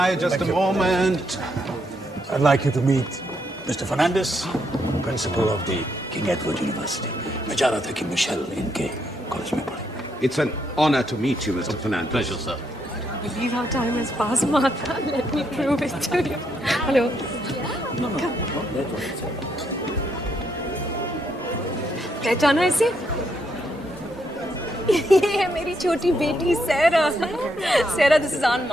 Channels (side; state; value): both; normal; correlation 0.76